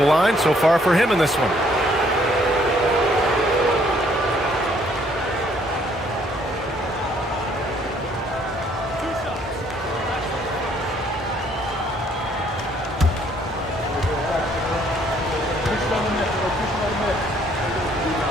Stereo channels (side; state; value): both; normal; correlation 0.65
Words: line so far for him in this one.